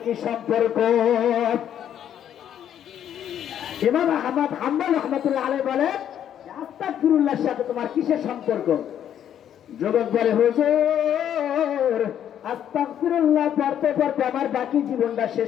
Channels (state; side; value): quieter; right; 9.9 dB